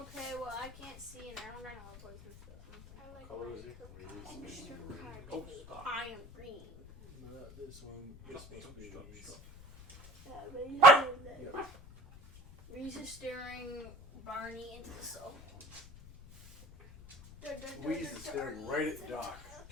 well, I can't see and I don't know what poison stuff. I like Color is my it? extra Wheeze. card. Oh, stop. I am green. Not this one. This must be Wheeze. Yep. Reese is staring Barney into the soul. Wheeze is staring right at Doc.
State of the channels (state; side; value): noise; left; rumble, 18 dB below the sound